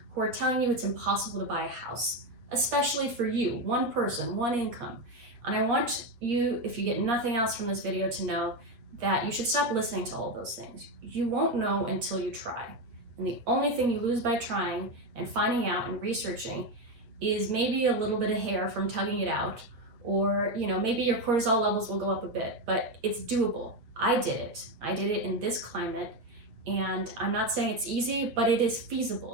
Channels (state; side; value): late; left; 8.6 ms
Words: who are telling you it's impossible to buy a house, especially for you, one person, one income. And I want you, if you get nothing else from this video, to know that you should stop listening to all those things. You won't know until you try. And the only thing you lose by trying and finding out and researching is maybe a little bit of hair from tugging it out, or maybe your cortisol levels will go up a bit, but it's doable. I did it in this climate, and I'm not saying it's easy, but it is